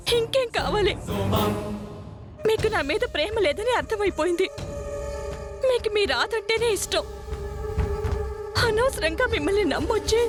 ఇంకేం కావాలి? మీకు నా మీద ప్రేమ లేదని అర్థమైపోయింది. మీకు మీ రాదంటేనే ఇష్టం. అనవసరంగా మిమ్మల్ని నమ్మొచ్చి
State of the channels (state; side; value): identical; both; correlation 1.00